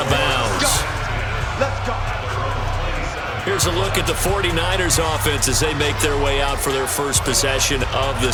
bounds. Let's go. Here's a look at the 49ers offense as they make their way out for their first possession of the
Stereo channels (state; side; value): identical; both; correlation 1.00